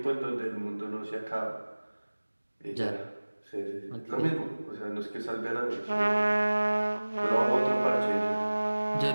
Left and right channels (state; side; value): inverted; both; correlation -1.00